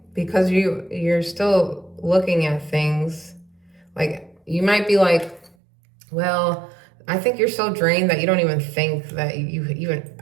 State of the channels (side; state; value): left; drops out; at 5.6 s